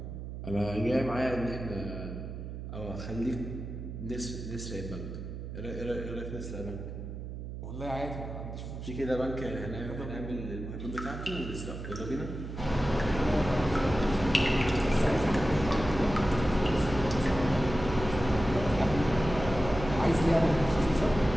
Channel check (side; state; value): right; noise; hum, 8 dB below the sound